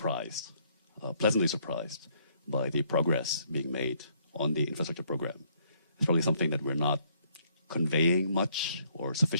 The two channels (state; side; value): inverted; both; correlation -0.68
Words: pleasantly surprised by the progress being made on the infrastructure program. It's probably something that we're not conveying much or